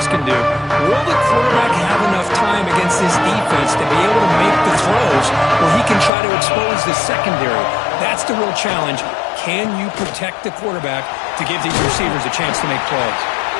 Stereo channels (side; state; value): right; drops out; at 6.1 s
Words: can do. Will the quarterback have enough time against this defense to be able to make the throws where he can try to expose the secondary? That's the real challenge. Can you protect the quarterback to give these receivers a chance to make plays?